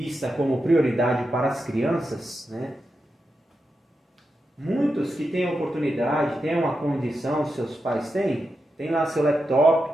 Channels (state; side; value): normal; both; correlation 0.88